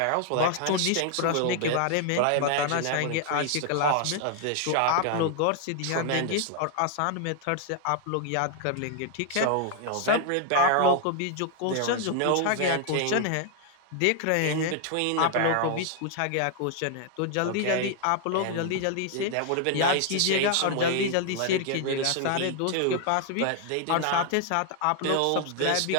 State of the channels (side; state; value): both; different; correlation 0.00